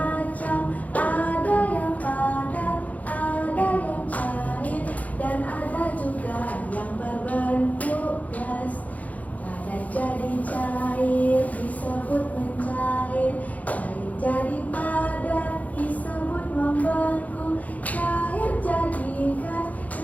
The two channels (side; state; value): right; late; 0.074 ms